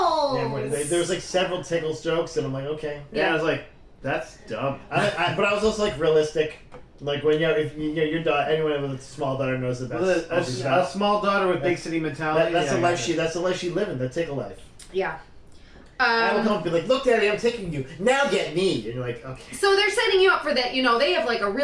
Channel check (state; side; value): identical; both; correlation 1.00